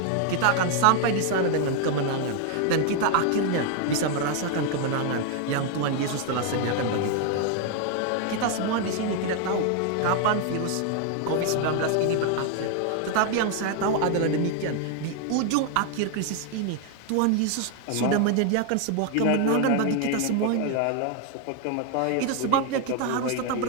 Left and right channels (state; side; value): different; both; correlation 0.00